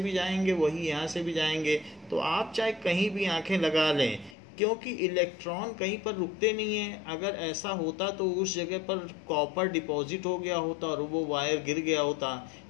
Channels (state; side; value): drops out; right; at 4.4 s